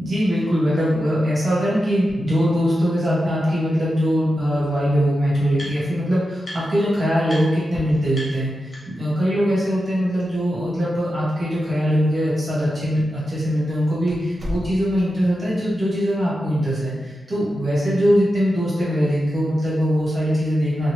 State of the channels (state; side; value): normal; both; correlation 0.90